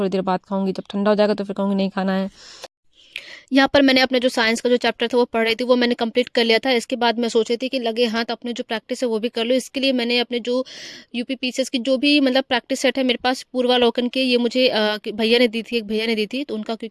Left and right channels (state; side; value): identical; both; correlation 1.00